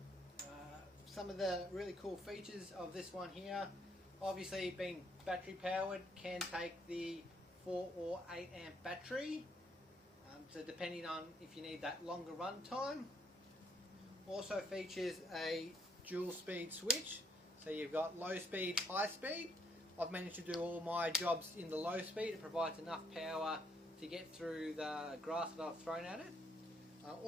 Some of the really cool features of this one here, obviously being battery powered, can take the 4 or 8 amp battery. So depending on if you need that longer run time. Also features a dual speed switch, so you've got low speed, high speed. I've managed to do all my jobs in the low speed. It provides enough power to get through the grass that I've thrown at it.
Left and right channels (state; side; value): normal; both; correlation 0.70